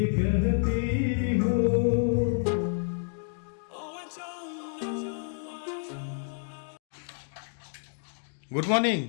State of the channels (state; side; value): silent; right; 58 dB below the other